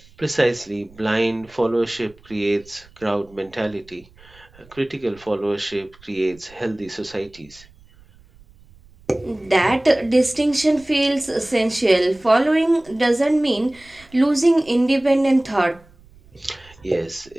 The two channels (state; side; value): noise; right; rumble, 27 dB below the sound